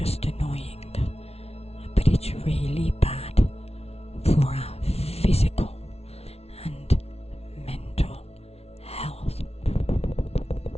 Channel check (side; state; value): right; late; 0.30 ms